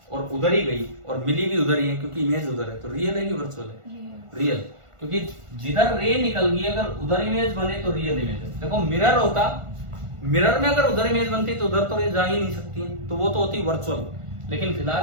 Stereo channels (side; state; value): left; late; 1.4 ms